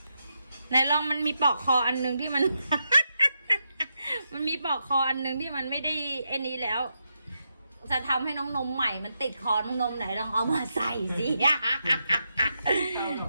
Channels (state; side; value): inverted; both; correlation -0.84